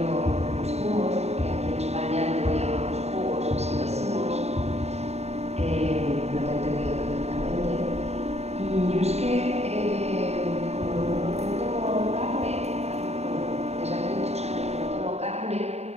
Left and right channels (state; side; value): late; left; 0.31 ms